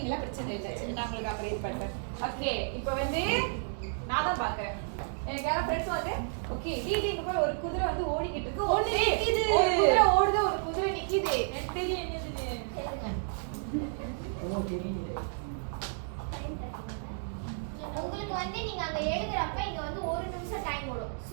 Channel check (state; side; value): silent; left; digital silence